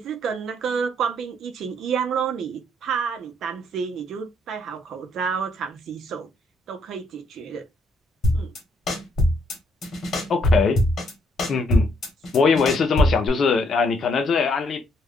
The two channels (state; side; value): normal; both; correlation 0.71